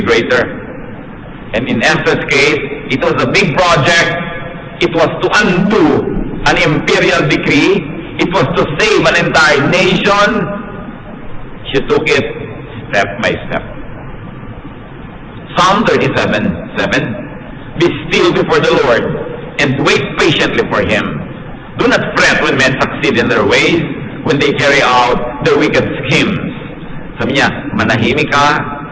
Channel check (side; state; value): both; identical; correlation 1.00